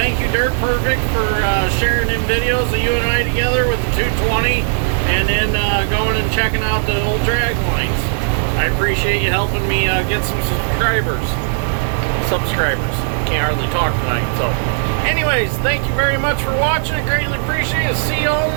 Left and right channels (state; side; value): silent; left; digital silence